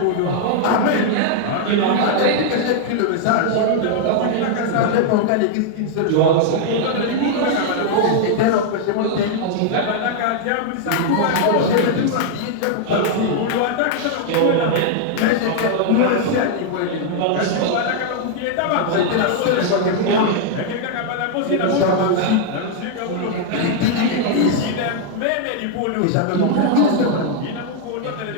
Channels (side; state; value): both; different; correlation 0.00